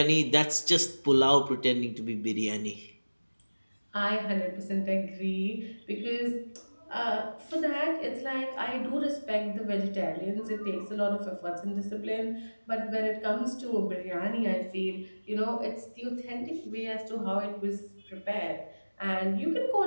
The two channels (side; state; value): both; inverted; correlation -1.00